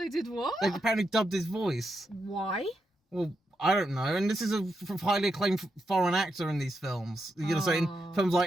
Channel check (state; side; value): normal; both; correlation 0.84